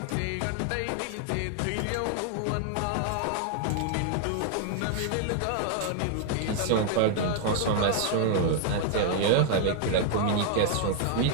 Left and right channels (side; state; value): both; different; correlation 0.00